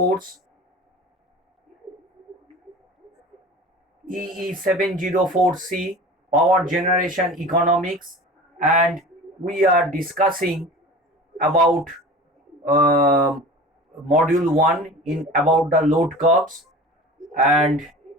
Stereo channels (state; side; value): normal; both; correlation 0.38